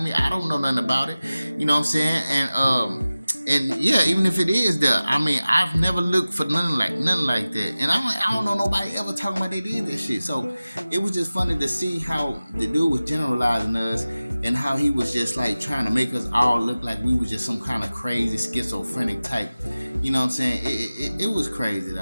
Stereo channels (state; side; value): inverted; both; correlation -0.97